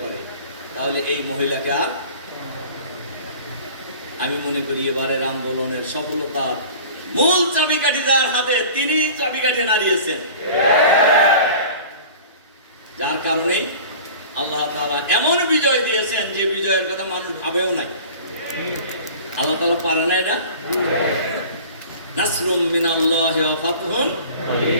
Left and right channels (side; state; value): both; inverted; correlation -0.42